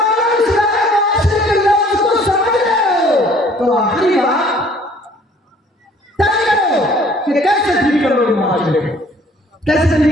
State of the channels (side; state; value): both; normal; correlation 0.56